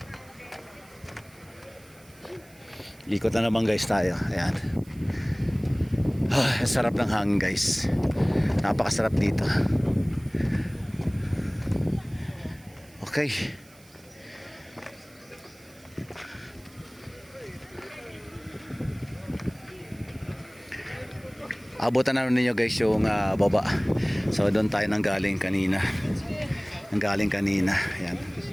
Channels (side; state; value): right; noise; hiss, 26 dB below the sound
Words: Ikot na naman guys tayo. Ayan. Sarap ng hangin guys. Napakasarap dito. Okay. Abutan na ninyo guys yung baba. So doon tayo nanggaling kanina. Ayan.